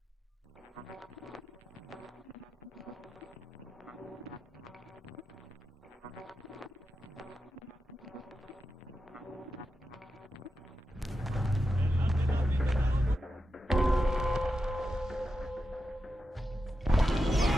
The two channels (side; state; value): both; normal; correlation 0.89